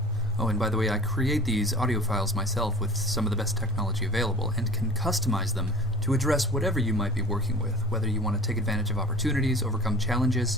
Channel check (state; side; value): normal; both; correlation 0.42